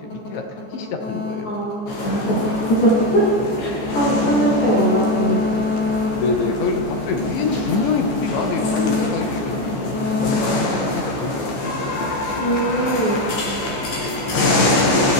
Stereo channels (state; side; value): late; right; 15 ms